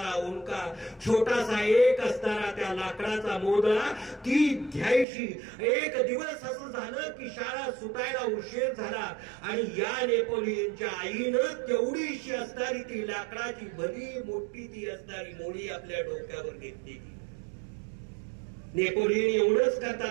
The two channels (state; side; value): drops out; left; at 5.1 s